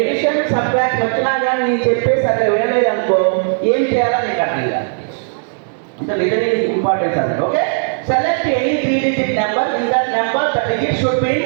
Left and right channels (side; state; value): left; silent; digital silence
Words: subtract వచ్చినా కానీ నేను చెప్పేసి అట్లా వినలేదు అనుకో, ఏం చేయాలో నీకు అర్థం కాదు. అంటే లిజనింగ్ ఇంపార్టెన్స్ అంటే. Okay, select any 3-digit number, in that number the digit should be